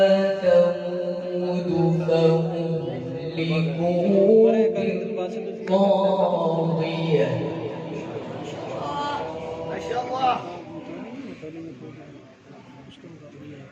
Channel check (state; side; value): identical; both; correlation 1.00